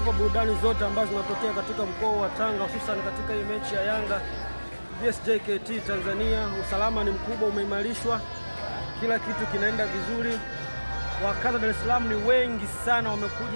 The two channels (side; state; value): both; inverted; correlation -1.00